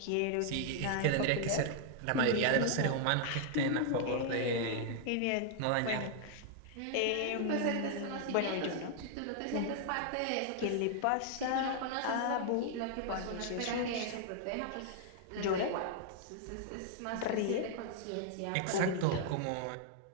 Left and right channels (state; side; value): different; both; correlation 0.00